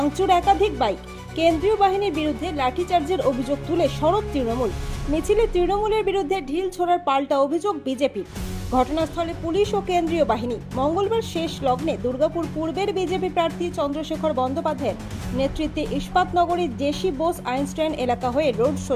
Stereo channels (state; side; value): identical; both; correlation 1.00